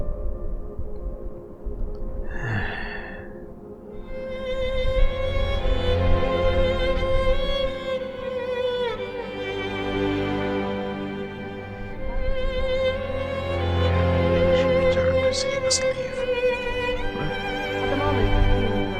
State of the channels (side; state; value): both; identical; correlation 1.00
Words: At the moment,